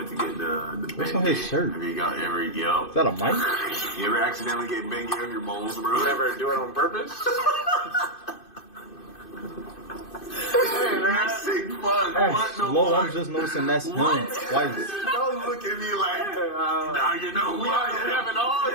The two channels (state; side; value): late; right; 2.5 ms